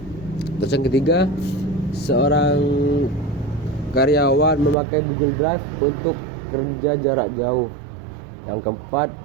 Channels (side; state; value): left; drops out; at 4.8 s